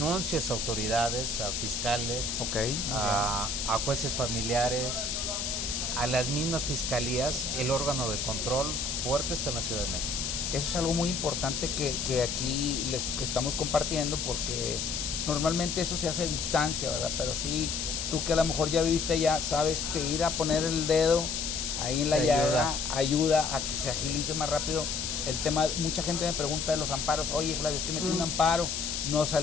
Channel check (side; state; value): left; noise; hiss, 2 dB below the sound